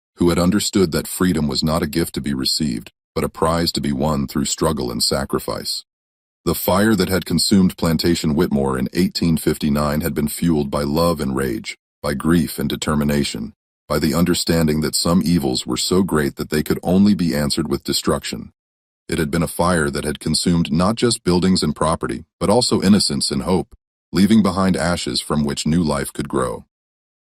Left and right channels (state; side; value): identical; both; correlation 1.00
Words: who had understood that freedom was not a gift to be received, but a prize to be won through struggle and sacrifice. The fire that had consumed Plantation Whitmore in 1859 had been fueled by love and rage, by grief and determination, by the understanding that some evils were so great that they could only be answered with destruction. It had been a fire that had consumed not just buildings and property, but also innocence and hope, leaving behind ashes from which new life could grow.